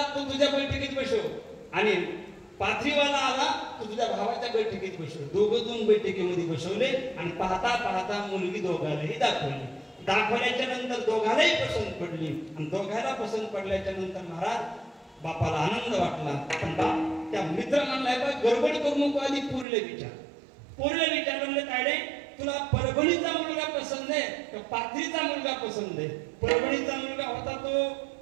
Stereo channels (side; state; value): left; drops out; at 19.7 s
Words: तो तुझ्या बैठकीत बसव, आणि पाथरीवाला आला तो तुझ्या भावाच्या बैठकीत बसव. दोघं 2 बैठकीमध्ये बसवले, आणि पाहता पाहता मुलगी दोघांनाही दाखवली. दाखवल्याच्या नंतर दोघांनाही पसंत पडली, आणि दोघांना पसंत पडल्याच्या नंतर महाराज बापाला आनंद वाटला. पण बाप त्या मित्र म्हणलाय, बा गडबड करू नको, आधी पोरीला विचार म्हणले, तायडे तुला परभणीचा मुलगा पसंत आहे का पाथरीचा मुलगा पसंत आहे? परभणीचा मुलगा होता तो